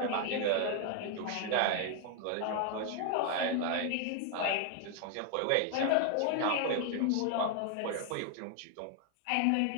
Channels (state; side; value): different; both; correlation 0.00